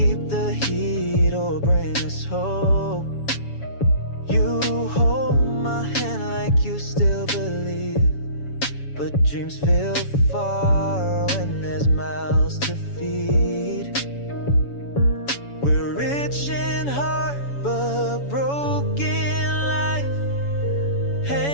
the heat or bring us hope. You hold my hand like you still believe, but dreams feel far when there's mouths to feed. We're rich in heart but broken life,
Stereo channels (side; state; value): right; late; 7.1 ms